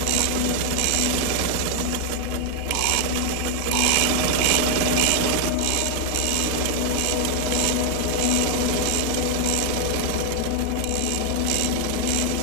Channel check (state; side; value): different; both; correlation 0.00